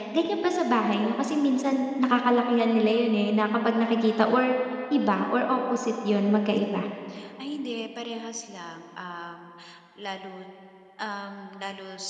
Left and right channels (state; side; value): identical; both; correlation 1.00